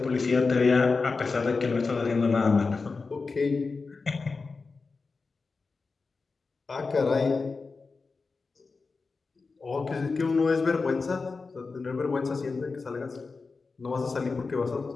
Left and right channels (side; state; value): right; quieter; 4.3 dB